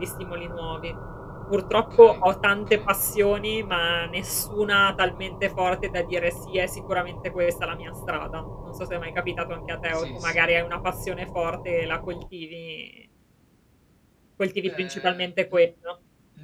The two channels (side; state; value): both; identical; correlation 1.00